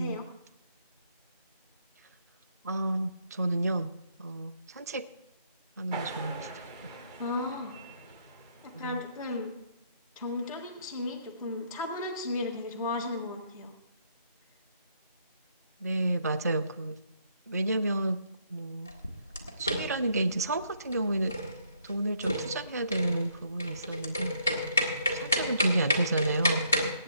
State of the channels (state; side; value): inverted; both; correlation -0.69